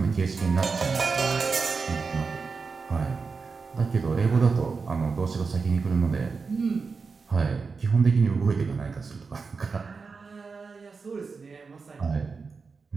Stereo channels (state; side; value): quieter; left; 4.8 dB